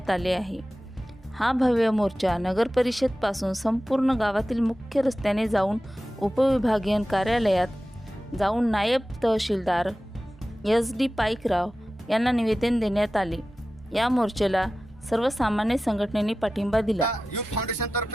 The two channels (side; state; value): both; normal; correlation 0.95